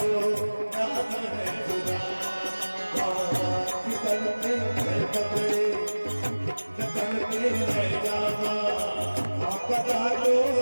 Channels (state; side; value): inverted; both; correlation -1.00